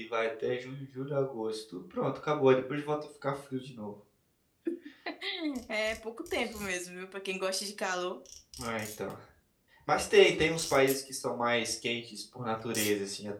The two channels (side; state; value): both; identical; correlation 1.00